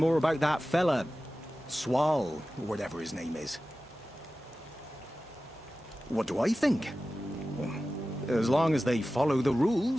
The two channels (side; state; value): both; normal; correlation 0.95